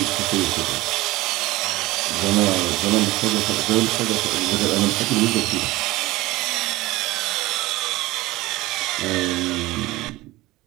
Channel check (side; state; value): left; quieter; 19.1 dB